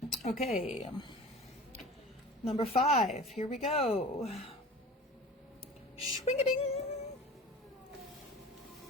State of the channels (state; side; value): normal; both; correlation 0.39